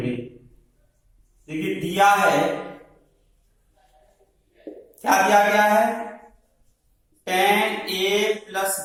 देखिए दिया है, क्या दिया गया है, tan a प्लस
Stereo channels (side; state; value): both; identical; correlation 1.00